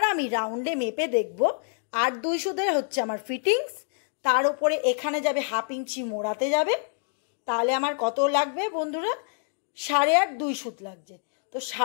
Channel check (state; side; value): silent; right; digital silence